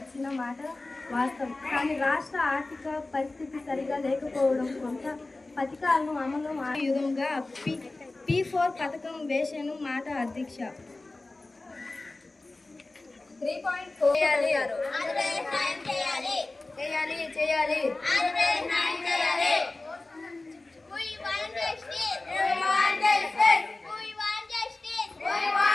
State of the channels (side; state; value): right; quieter; 3.1 dB